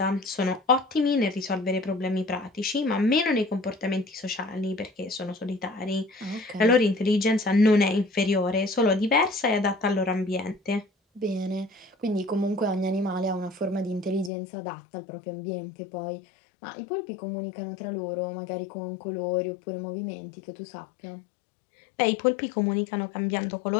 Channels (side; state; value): right; drops out; at 14.3 s